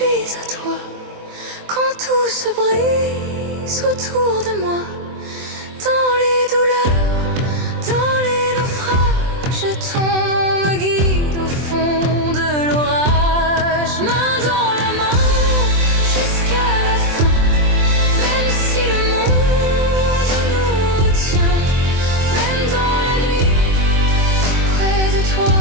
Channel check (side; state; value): left; late; 24 ms